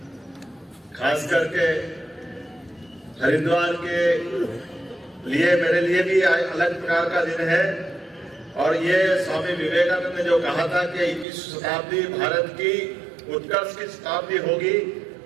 खास करके हरिद्वार के लिए, मेरे लिए भी अलग प्रकार का दिन है। और ये स्वामी विवेकानंद ने जो कहा था कि 21वीं शताब्दी भारत की उत्कर्ष की शताब्दी होगी,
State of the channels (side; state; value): left; drops out; at 11.2 s